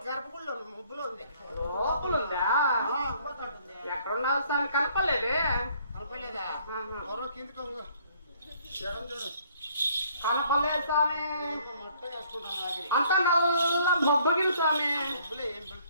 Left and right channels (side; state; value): both; inverted; correlation -0.62